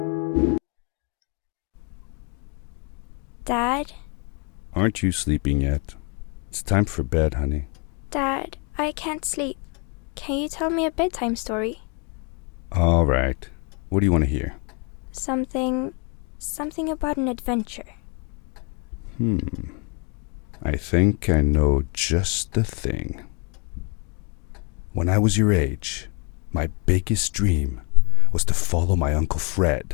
Dad? Aren't you sleeping yet? It's time for bed, honey. Dad, I can't sleep. Can you tell me a bedtime story? All right. What do you want to hear? Something about an adventure. I think I know just the thing. When I was your age, my biggest dream was to follow my Uncle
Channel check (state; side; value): quieter; right; 34.1 dB